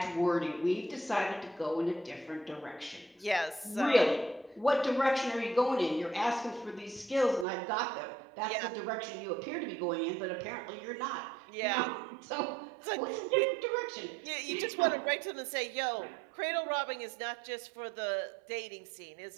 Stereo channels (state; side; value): drops out; left; at 7.5 s